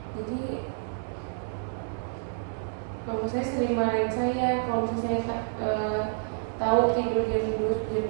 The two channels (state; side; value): silent; left; digital silence